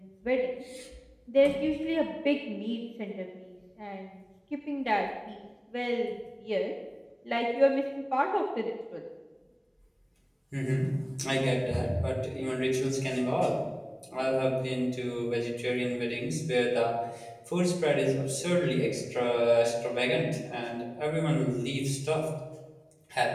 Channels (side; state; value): both; identical; correlation 1.00